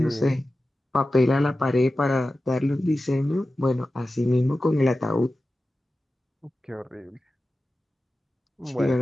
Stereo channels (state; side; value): normal; both; correlation 0.94